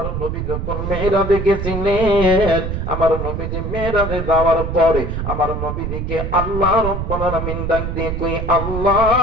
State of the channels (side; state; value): right; noise; rumble, 4 dB below the sound